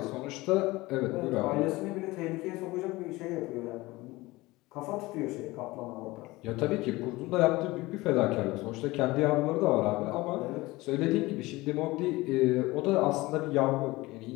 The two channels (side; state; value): right; quieter; 20.5 dB